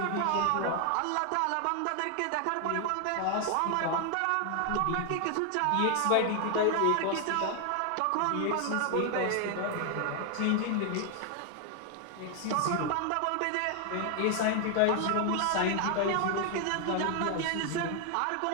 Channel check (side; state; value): both; different; correlation 0.00